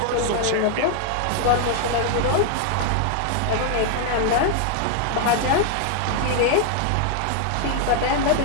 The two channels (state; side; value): different; both; correlation 0.00